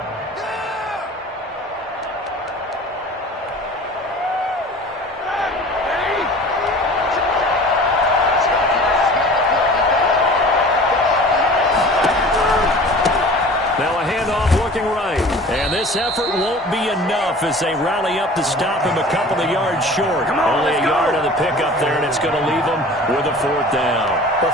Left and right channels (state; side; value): normal; both; correlation 0.42